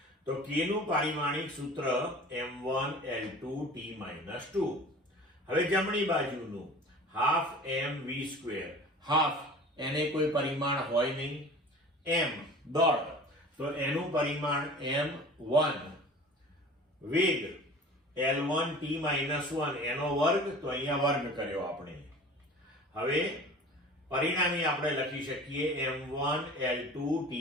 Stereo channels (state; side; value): normal; both; correlation 0.41